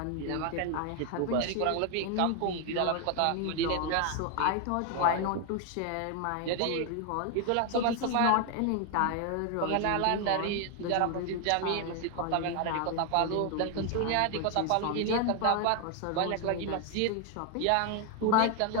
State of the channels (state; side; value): different; both; correlation 0.01